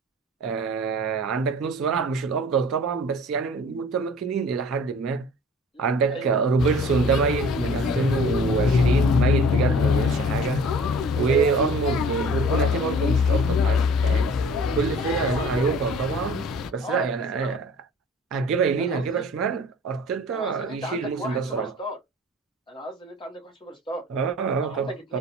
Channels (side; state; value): both; normal; correlation 0.47